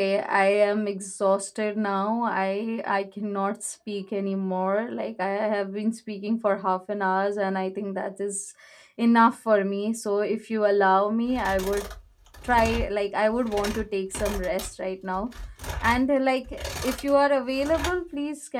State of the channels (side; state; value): both; identical; correlation 1.00